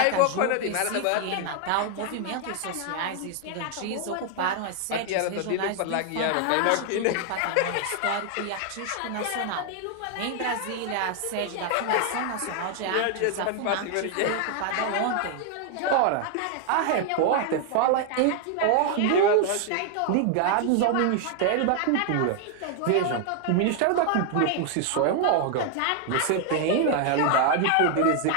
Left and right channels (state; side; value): different; both; correlation 0.00